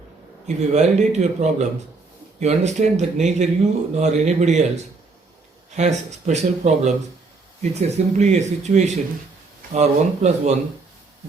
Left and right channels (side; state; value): left; quieter; 3.9 dB